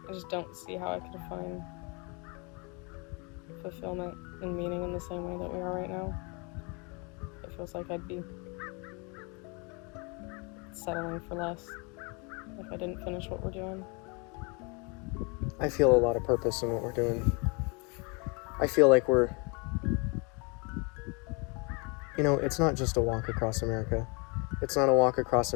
I just don't see how I could find fulfillment and meaning in the same way that we are right now. It feels like I'd be settling for less if I didn't finish what we're doing. I feel a lot of purpose in what we're doing. I feel like we're, it's not just a walk across America. It's not a walk across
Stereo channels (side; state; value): right; quieter; 31.8 dB